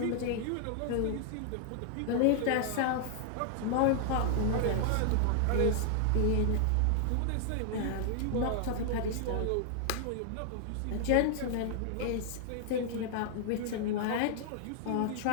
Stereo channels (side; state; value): both; different; correlation -0.01